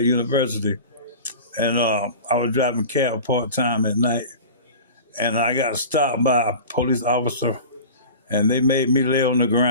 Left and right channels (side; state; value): both; inverted; correlation -0.35